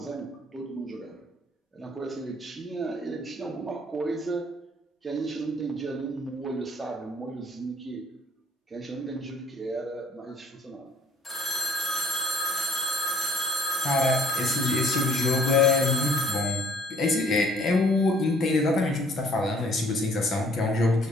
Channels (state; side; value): normal; both; correlation 0.59